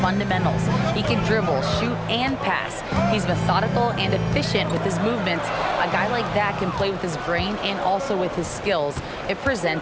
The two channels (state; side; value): identical; both; correlation 1.00